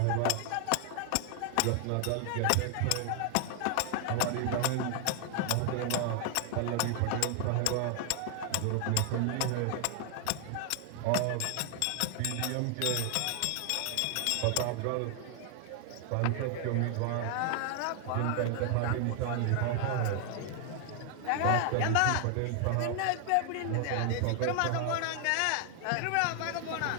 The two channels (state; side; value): different; both; correlation 0.00